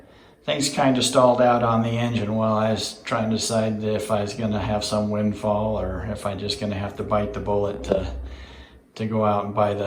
things kind of stalled out on the engine while I was trying to decide if I was going to have some windfall or if I'm just going to have to bite the bullet to go out and buy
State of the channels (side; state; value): both; identical; correlation 1.00